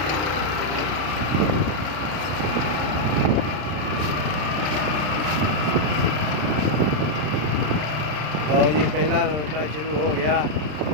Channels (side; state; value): left; late; 33 ms